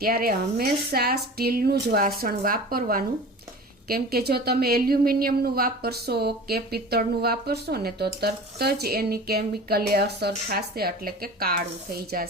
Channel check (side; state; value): both; normal; correlation 0.38